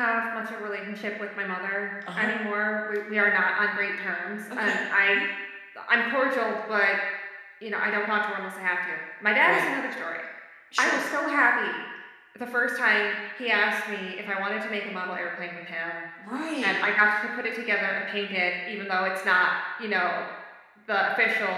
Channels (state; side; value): identical; both; correlation 1.00